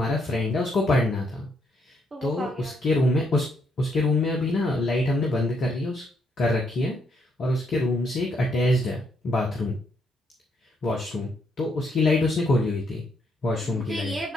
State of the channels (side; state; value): both; normal; correlation 0.74